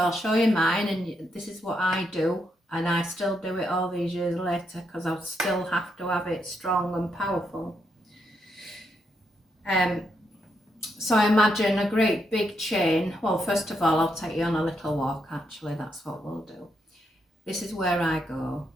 I'll show you mine, and this is what I do, and I still do it all these years later because I still have to have it strong and powerful. So I imagine a great big chain. Well, first of all, I'll take you on a little walk, actually. That's what we'll do. This is where I go.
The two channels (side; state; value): both; normal; correlation 0.79